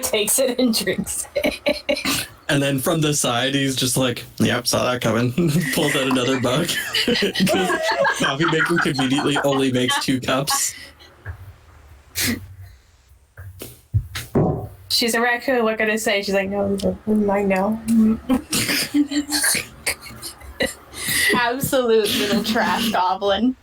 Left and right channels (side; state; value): both; identical; correlation 1.00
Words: takes it and drinks it. And then from the side, he's just like, yep, saw that coming. Pulls out another mug. Because coffee maker conveniently only makes 2 cups. She's a raccoon, what can I say? She's like, no, mine now. Absolute little trash goblin.